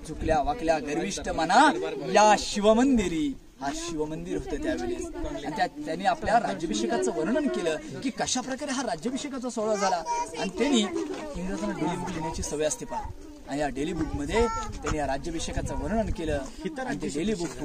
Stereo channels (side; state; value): both; identical; correlation 1.00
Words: झुकल्या वाकल्या गर्विष्ठ मना या शिवमंदिरी. हा शिवमंदिर होतं त्यावेळेस. आणि त्यांनी आपल्या राज्याभिषेकाचं वर्णन केलं की कशा प्रकारे हा राज्याभिषेकाचा सोहळा झाला. आणि त्यांनी इंग्रजांना डेली बुक लिहिण्याची सवय असते पहा. आणि या डेली बुक मध्ये त्यांनी या राज्याभिषेकाचं वर्णन केलं. आणि ते डेली बुक